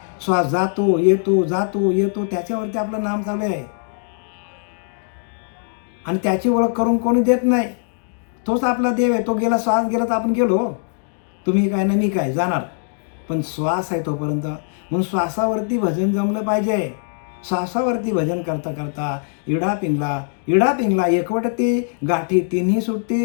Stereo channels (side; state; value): right; silent; digital silence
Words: श्वास जातो येतो, जातो येतो, त्याच्यावरती आपलं नाम चालू आहे. आणि त्याची ओळख करून कोणी देत नाही. तोच आपला देव आहे. तो गेला, श्वास गेला तर आपण गेलो. तुम्ही काय ना मी काय जाणार, पण श्वास आहे तोपर्यंत. म्हणून श्वासावरती भजन जमलं पाहिजे. श्वासावरती भजन करता करता इडा पिंगला एकवटती गाठी तिन्ही